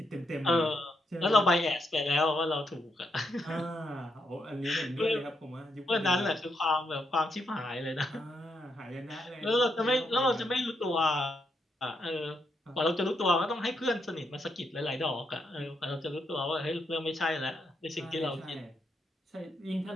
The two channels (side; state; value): both; normal; correlation 0.79